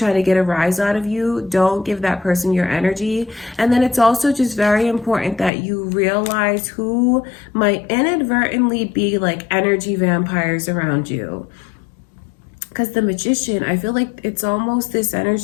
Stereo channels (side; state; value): right; drops out; at 5.5 s